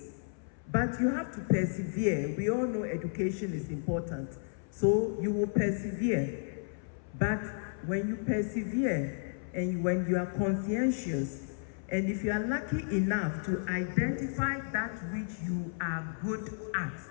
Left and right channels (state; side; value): silent; right; 56 dB below the other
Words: but you have to persevere. We all know education is important, so you will persevere. But when you persevere and when you are conscientious, and if you are lucky enough to identify that which you are good at,